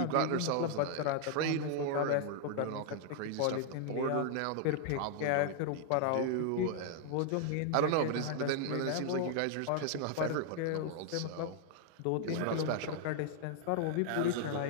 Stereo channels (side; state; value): both; different; correlation 0.00